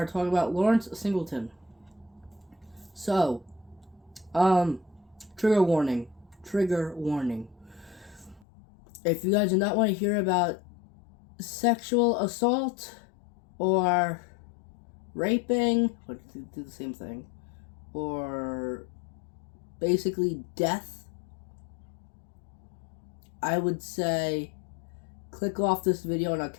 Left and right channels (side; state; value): right; drops out; at 8.5 s